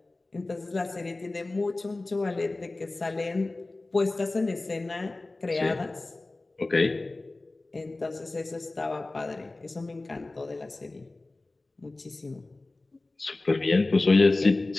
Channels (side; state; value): right; quieter; 3.1 dB